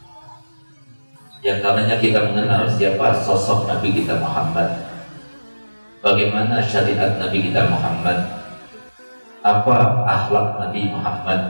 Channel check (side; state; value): both; inverted; correlation -1.00